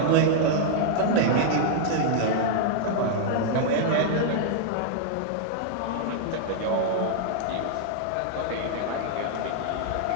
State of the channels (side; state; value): both; different; correlation -0.01